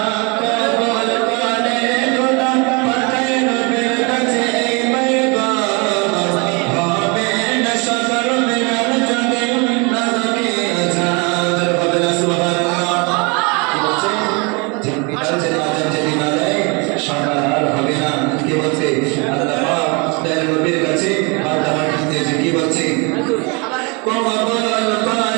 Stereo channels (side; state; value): left; quieter; 30.5 dB